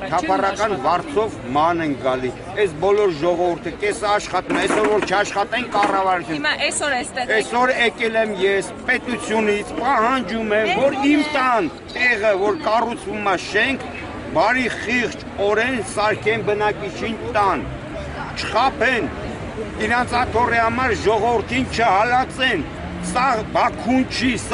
թափառական վարձով ման են գալի։ Այս բոլոր ժողովուրդը կեսը աշխատում է, այսօր որ չաշխատեն կառավարություն։ Հիմա այսօր էստեղ Այսօր եկել եմ ես պետությունից, պահանջում եմ, որ իմ տան տեղը, որ կառուցվում է շենք, բարի խիղճ օրեն սարքեն բնակիչին տան, չխափեն, իրանց աթոռի համար ժողովրդին չհալածեն, սա Բաքուն չի,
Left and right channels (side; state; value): both; identical; correlation 1.00